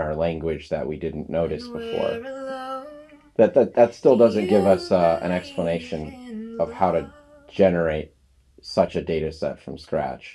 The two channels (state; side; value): identical; both; correlation 1.00